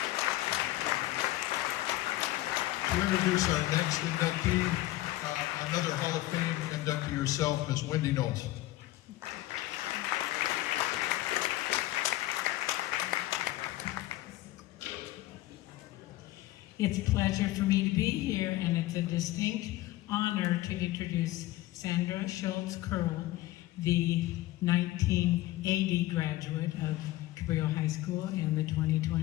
To introduce our next inductee, another Hall of Fame inductee herself, Ms. Wendy Knowles. It's a pleasure for me to be here, and it's a distinct honor to introduce Sandra Schultz Curl, the 1980 graduate of Cabrillo High School and the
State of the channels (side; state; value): right; quieter; 16.7 dB